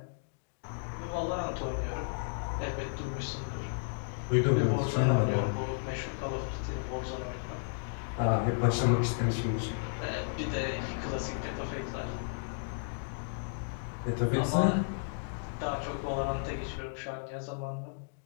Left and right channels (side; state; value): right; silent; digital silence